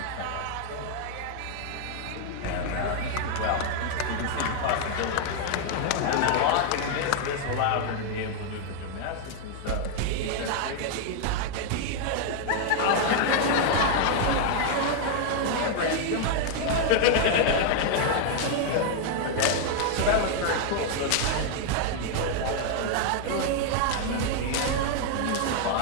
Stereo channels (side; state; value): both; different; correlation 0.00